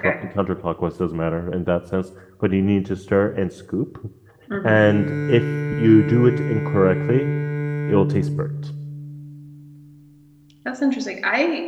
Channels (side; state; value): both; identical; correlation 1.00